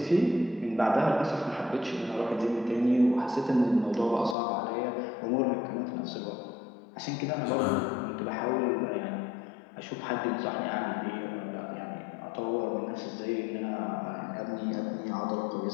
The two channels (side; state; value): right; drops out; at 4.4 s